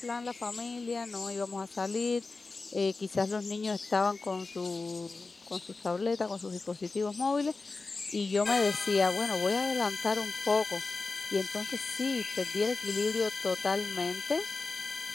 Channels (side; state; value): right; quieter; 3.8 dB